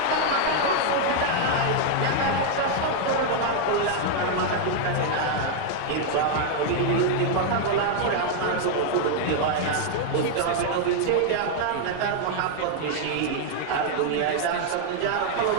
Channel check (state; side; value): different; both; correlation 0.00